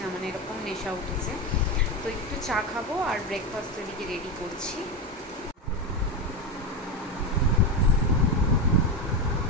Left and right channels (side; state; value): both; normal; correlation 0.15